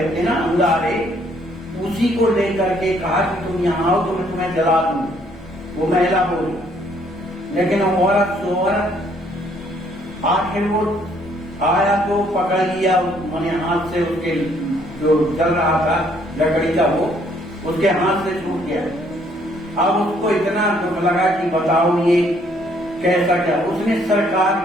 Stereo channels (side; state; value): both; normal; correlation 0.66